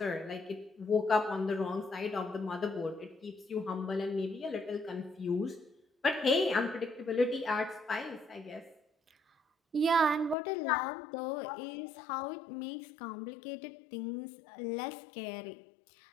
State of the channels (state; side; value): drops out; right; at 10.4 s